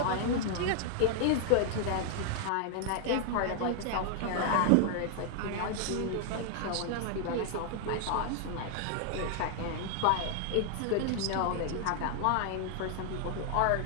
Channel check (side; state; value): both; different; correlation 0.00